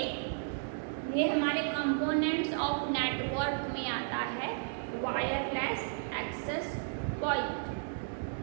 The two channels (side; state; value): left; silent; digital silence